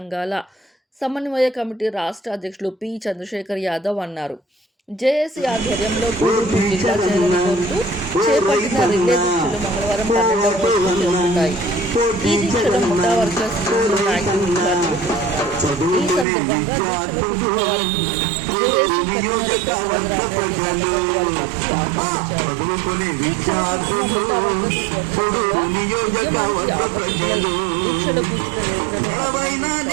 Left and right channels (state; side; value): drops out; left; at 16.2 s